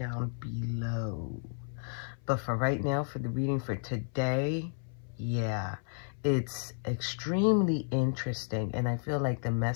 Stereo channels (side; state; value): right; silent; 56 dB below the other